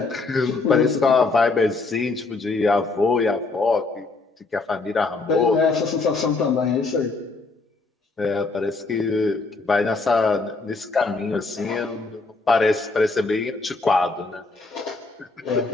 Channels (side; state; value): right; quieter; 3.7 dB